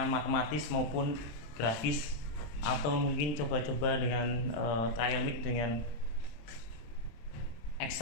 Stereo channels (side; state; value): right; late; 27 ms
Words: matematis maupun grafis, atau mungkin coba-coba dengan trial mix dengan